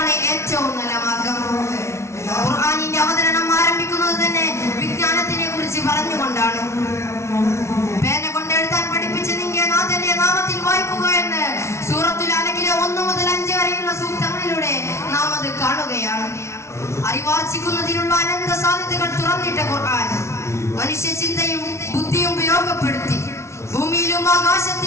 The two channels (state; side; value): late; right; 0.13 ms